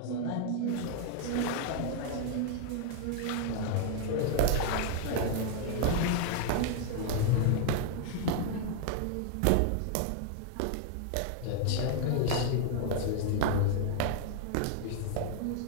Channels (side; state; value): both; different; correlation 0.00